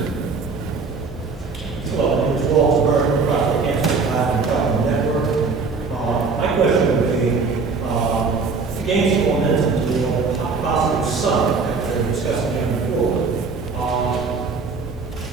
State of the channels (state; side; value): quieter; left; 4.5 dB